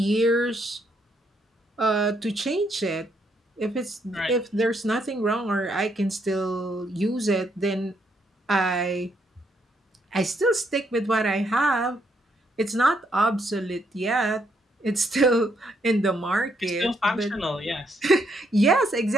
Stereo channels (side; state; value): both; normal; correlation 0.74